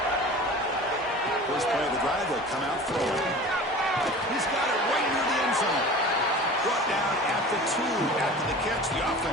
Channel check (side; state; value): both; normal; correlation 0.39